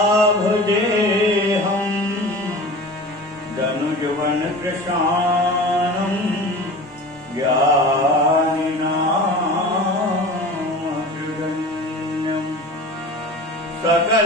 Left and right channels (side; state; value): both; normal; correlation 0.36